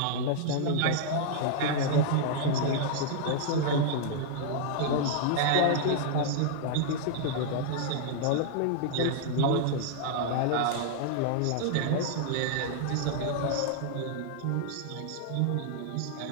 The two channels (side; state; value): both; different; correlation -0.01